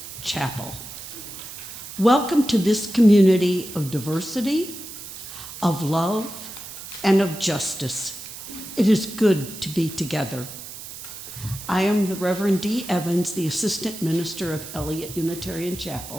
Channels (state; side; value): noise; right; hiss, 12 dB below the sound